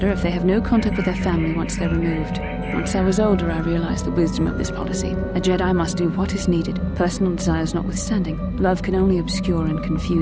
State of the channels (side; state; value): both; identical; correlation 1.00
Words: if they have no contact with their family once they're removed. Once I was older, I realized the wisdom of this policy. A Jedi must do what is needed, personal desires notwithstanding. Love can only obscure and